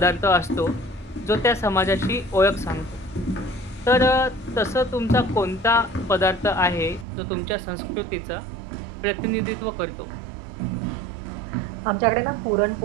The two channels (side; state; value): left; drops out; at 7.1 s